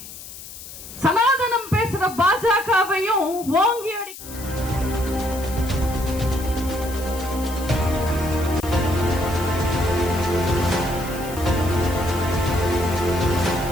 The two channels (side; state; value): left; noise; hiss, 14 dB below the sound